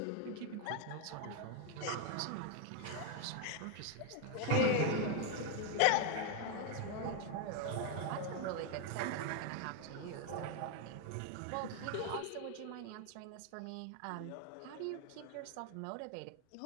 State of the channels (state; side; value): different; both; correlation 0.01